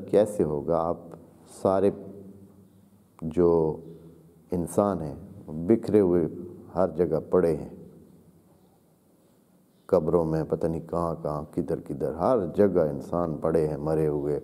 کیسے ہوگا، آپ سارے جو انسان ہیں بکھرے ہوئے ہر جگہ پڑے ہیں، قبروں میں پتہ نہیں کہاں کہاں کدھر کدھر ہر جگہ انسان پڑے ہیں، مرے ہوئے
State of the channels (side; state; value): both; identical; correlation 1.00